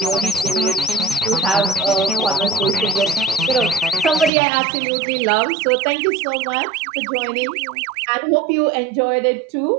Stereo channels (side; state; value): left; drops out; at 4.3 s